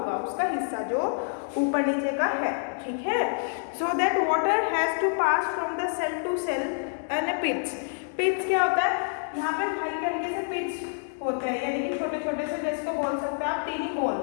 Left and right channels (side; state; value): right; silent; digital silence